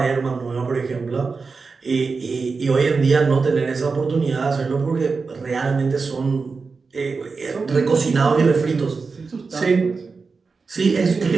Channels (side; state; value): left; quieter; 4.6 dB